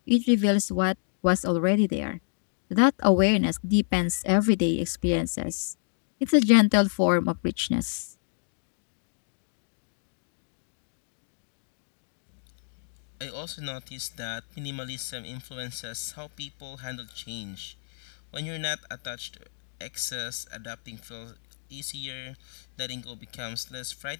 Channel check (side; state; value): right; silent; digital silence